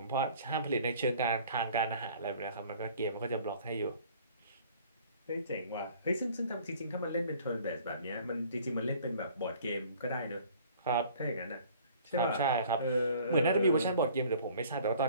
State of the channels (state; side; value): inverted; both; correlation -0.52